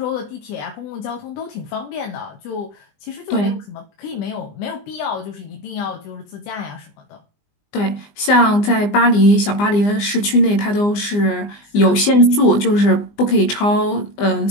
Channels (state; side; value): late; right; 20 ms